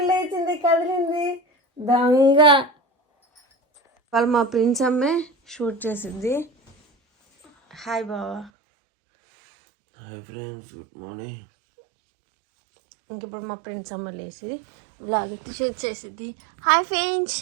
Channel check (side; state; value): left; drops out; at 8.5 s